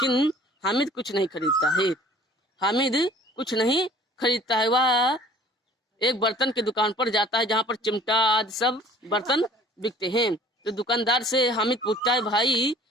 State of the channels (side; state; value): both; normal; correlation 0.51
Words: हामिद कुछ नहीं खरीदता है। वह एक बर्तन की दुकान पर जाता है जहाँ पर चिमटा आदि सब बर्तन बिकते हैं। तो दुकानदार से हामिद पूछता है, भाई